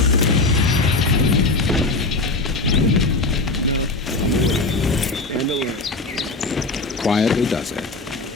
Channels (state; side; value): quieter; right; 3.3 dB